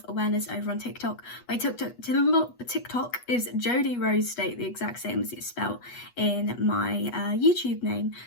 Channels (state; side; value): late; right; 8.2 ms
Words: awareness over on TikTok. My TikTok is Jodie Rose State, the exact same as it's spelled in my YouTube name.